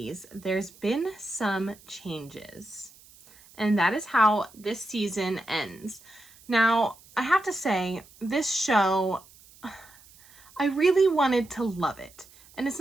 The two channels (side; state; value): right; noise; hiss, 25 dB below the sound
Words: There's been some changes. And that is how this season ends. Now, I have to say, this show, I really wanted to love it. And it's